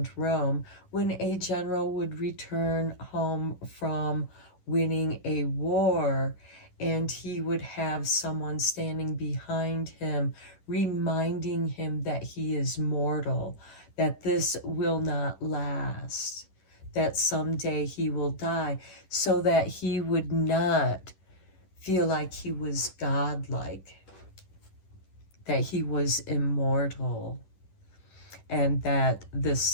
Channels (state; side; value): late; right; 11 ms